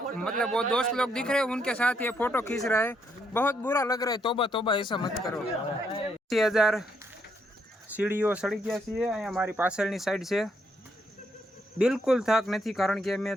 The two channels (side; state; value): both; normal; correlation 0.75